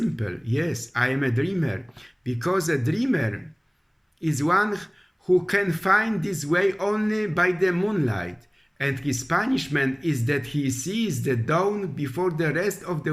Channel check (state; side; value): identical; both; correlation 1.00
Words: Yes, I am a dreamer, because a dreamer is one who can find this way only by the moonlight, and his punishment is that he sees the dawn before the rest of